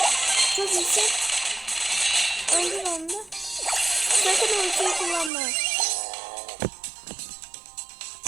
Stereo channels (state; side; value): drops out; left; at 5.3 s